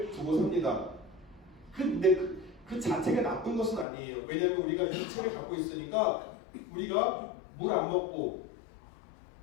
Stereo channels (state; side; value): drops out; right; at 3.9 s